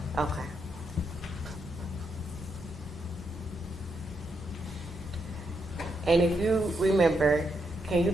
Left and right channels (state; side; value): normal; both; correlation 0.80